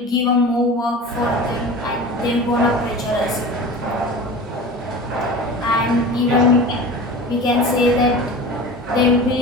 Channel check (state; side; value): normal; both; correlation 0.35